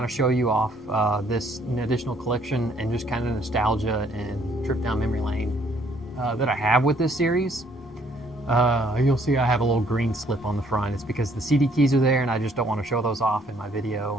of show you off this additional collection and just kind of nostalgia and trip down memory lane that I have with this series. You'll see I have a little green slip on the front. It's because the CD keys are there and I just don't want to show those off in my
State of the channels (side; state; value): both; normal; correlation 0.64